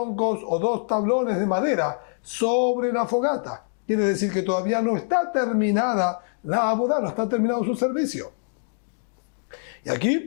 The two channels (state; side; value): silent; right; 62 dB below the other